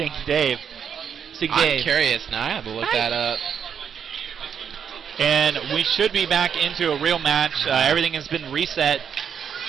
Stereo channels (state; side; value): quieter; left; 7.7 dB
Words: Dave. Stinky I'm Dave. curious now. I have to look that up. And we should be back into a real match. Everything has been reset.